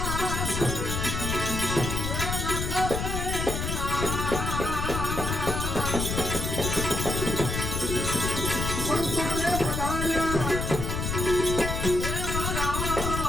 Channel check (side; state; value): left; noise; rumble, 2 dB below the sound